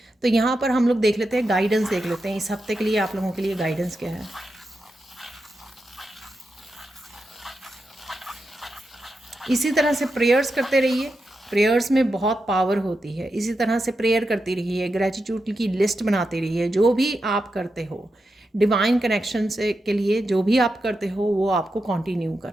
तो यहाँ पर हम लोग देख लेते हैं, गाइडेंस देख लेते हैं इस हफ्ते के लिए आप लोगों के लिए गाइडेंस क्या है। इसी तरह से प्रेयर्स करते रहिए, प्रेयर्स में बहुत पावर होती है। इसी तरह से प्रेयर करती रहिए, ग्रेटिट्यूड की लिस्ट बनाते रहिए। जो भी आप करते हो डिवाइन कनेक्शन से के लिए, जो भी आप करते हो वो आपको कंटिन्यू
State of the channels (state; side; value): normal; both; correlation 0.88